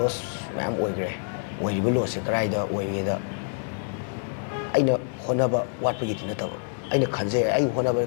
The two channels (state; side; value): silent; right; digital silence